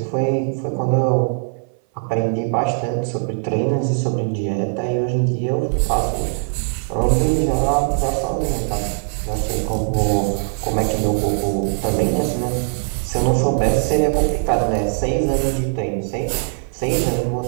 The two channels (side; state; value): left; silent; 59 dB below the other